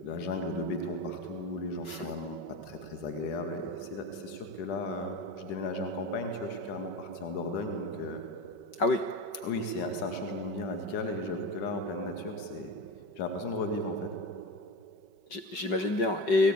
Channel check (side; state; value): right; late; 5.3 ms